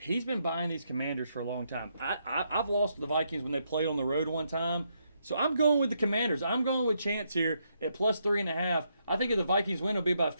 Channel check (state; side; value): inverted; both; correlation -0.78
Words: been buying these Commanders for a long time. I've lost the Vikings when they played on the road one time. So I'm going with the Commanders. I'm going with Chance here at +3.5. I think if the Vikings win, it'll be by